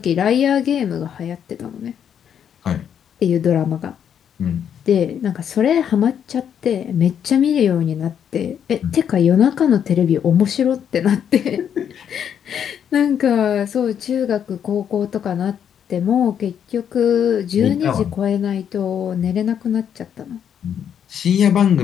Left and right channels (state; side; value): quieter; right; 8.6 dB